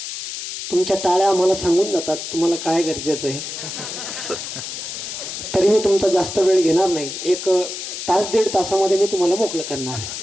तुमच्या टाळ्या मला सांगून जातात तुम्हाला काय गरजेचं आहे, तरी मी तुमचा जास्त वेळ घेणार नाही। एक तास दीड तासामध्ये मी तुम्हाला मोकळं करणार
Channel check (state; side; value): noise; left; hiss, 7 dB below the sound